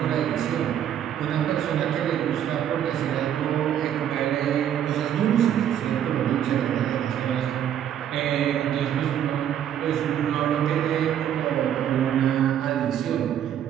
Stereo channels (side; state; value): left; quieter; 10.1 dB